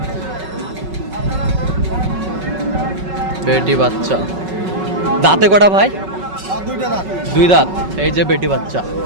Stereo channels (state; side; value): late; left; 5.3 ms